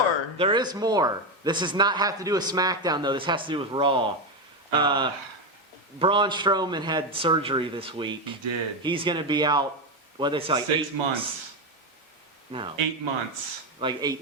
There is more. This does not have to do with SmackDown though. This has to do with Raw. Braun Strowman had surgery this week. He did. He's going to be out. What they say? Like 6 8 months. No. 8 months. Like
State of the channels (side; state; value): both; normal; correlation 0.11